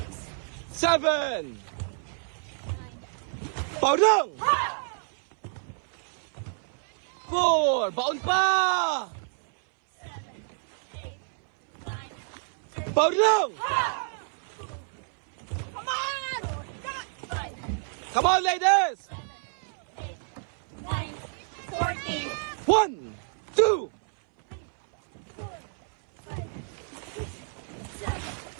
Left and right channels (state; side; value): silent; left; 59 dB below the other